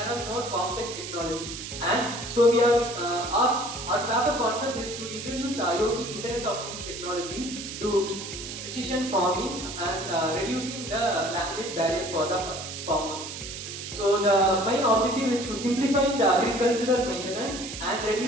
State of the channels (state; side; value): noise; right; hiss, 9 dB below the sound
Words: are more complex technology, and so we are our paper concept is to introduce the IoT Internet of Things technology to precision farming and reducing the language barrier for the farmers. So the main objective is to simplify the agricultural maintenance and